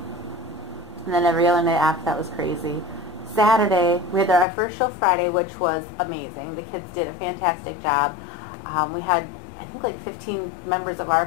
And then every other night after that was crazy. Saturday, we had our first show Friday, which was amazing. The kids did a fantastic job. We had, I think, like 15 members of our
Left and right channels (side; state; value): right; drops out; at 4.5 s